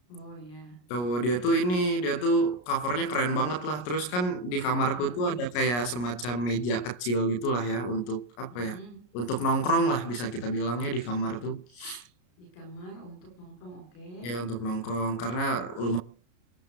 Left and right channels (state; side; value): late; right; 33 ms